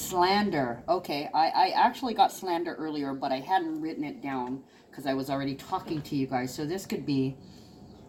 Okay, I actually got slander earlier, but I hadn't written it down because I was already talking to you guys. So this could be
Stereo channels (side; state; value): both; identical; correlation 1.00